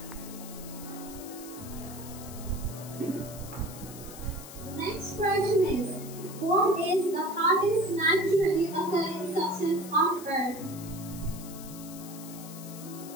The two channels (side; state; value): left; noise; hiss, 14 dB below the sound